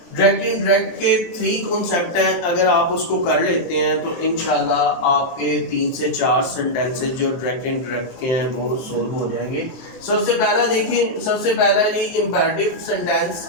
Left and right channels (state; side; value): late; right; 23 ms